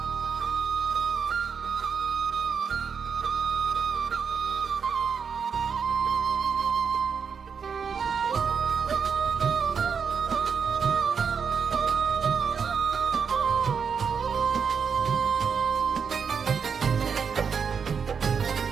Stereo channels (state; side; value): quieter; left; 6.3 dB